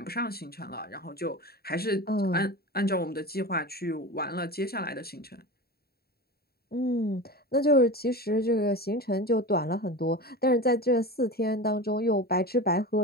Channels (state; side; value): late; right; 0.45 ms